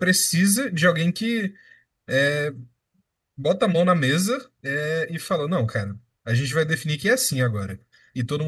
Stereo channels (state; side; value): identical; both; correlation 1.00